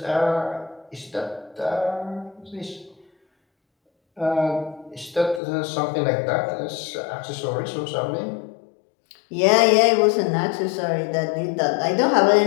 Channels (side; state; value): right; drops out; at 5.4 s